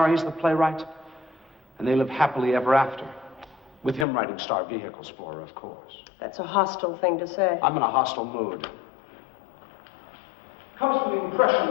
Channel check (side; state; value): right; drops out; at 4.0 s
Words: the playwright, and they live happily ever after. With him writing star vehicles for her, of course. That's a hostile thing to say. I'm in a hostile mood. Comes from the